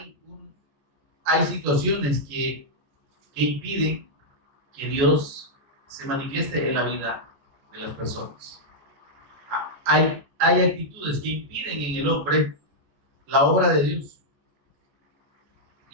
situaciones que impiden que Dios se manifieste en la vida de las personas. Hay actitudes que impiden en el hombre la obra de Dios.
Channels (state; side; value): late; left; 15 ms